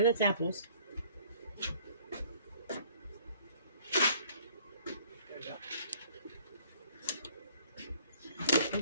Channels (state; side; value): inverted; both; correlation -0.56